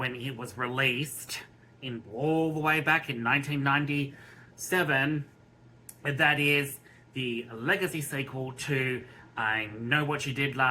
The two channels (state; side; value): identical; both; correlation 1.00